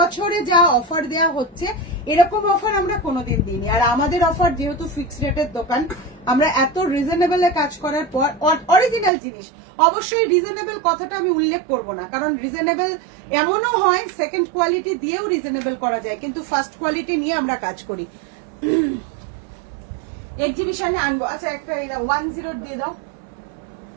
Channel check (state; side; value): drops out; left; at 9.1 s